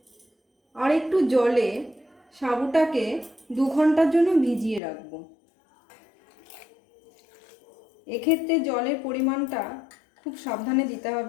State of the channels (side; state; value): right; drops out; at 4.8 s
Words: আর একটু জলে সাবুটাকে 2 ঘন্টার জন্য ভিজিয়ে রাখবো। এক্ষেত্রে জলের পরিমাণটা খুব সাবধানে দিতে